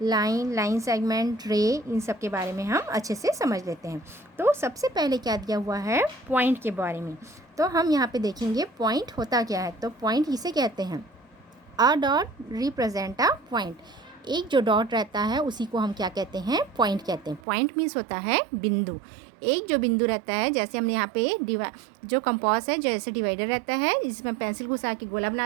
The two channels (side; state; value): left; drops out; at 17.4 s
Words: लाइन, लाइन सेगमेंट, रे, इन सब के बारे में हम अच्छे से समझ लेते हैं। तो सबसे पहले क्या दिया हुआ है, पॉइंट के बारे में। तो हम यहाँ पे देखेंगे पॉइंट होता क्या है। तो पॉइंट इसे कहते हैं, a dot represent a point. एक जो डॉट रहता है उसी को हम क्या कहते हैं, पॉइंट कहते हैं। पॉइंट मीन्स होता है बिंदु। एक जो बिंदु रहता है, जैसे हमने यहाँ पे जो कंपास है, जैसे डिवाइडर रहता है, जिसमें पेंसिल घुसा के गोला